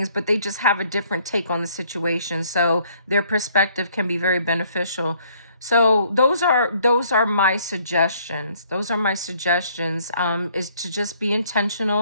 but they just have a different take on the situation. So their perspective can be very beneficial. So those are my suggestions. Those are my suggestions, is to just be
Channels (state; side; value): inverted; both; correlation -0.63